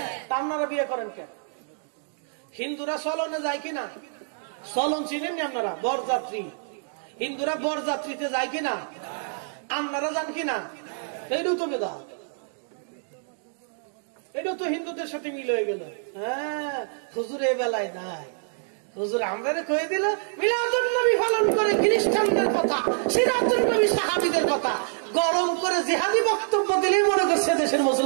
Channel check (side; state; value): left; silent; digital silence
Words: তা আপনারা বিয়ে করেন কেন? হিন্দুরা চলনে যায় কিনা? চলন চিনেন না আপনারা? বরযাত্রী, হিন্দুরা বরযাত্রীতে যায় কিনা? আপনারা যান কিনা? এইটাও তো বেদাত, এটাও তো হিন্দুদের সাথে মিল হয়ে গেল। হ্যাঁ, হুজুর এ বেলায় নাই, হুজুর আমরা কয়ে দিল মিলাদুন নবী পালন করে খ্রিস্টানদের কথা, সিরাতুন নবী সাহাবীদের কথা গরম করে জিহাদি বক্তব্য দিলেই মনে করছে দেশের